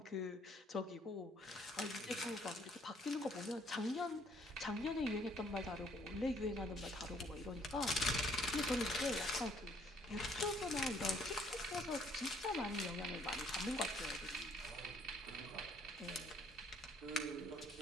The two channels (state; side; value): normal; both; correlation 0.64